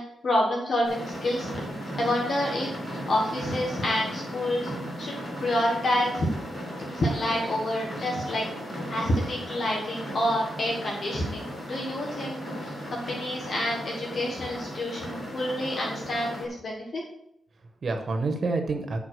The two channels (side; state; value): both; normal; correlation 0.84